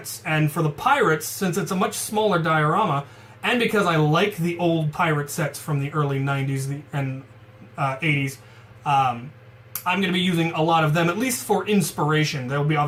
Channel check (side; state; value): both; identical; correlation 1.00